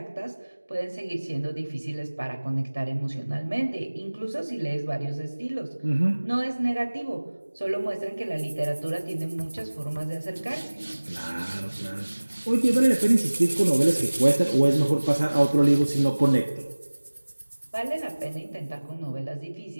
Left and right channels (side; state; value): both; inverted; correlation -1.00